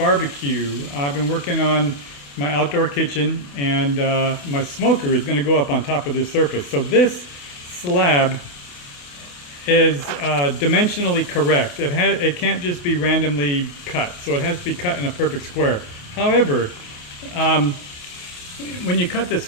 I've been working on my outdoor kitchen, and my smoker is going to go up on top of this surface. So this slab is dimensionally correct. It can't just be randomly cut, so it has to be cut in a perfect square. However, when you cut this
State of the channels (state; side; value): late; right; 28 ms